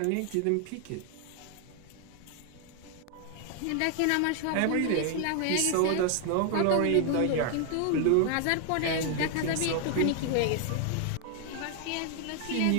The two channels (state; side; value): different; both; correlation 0.00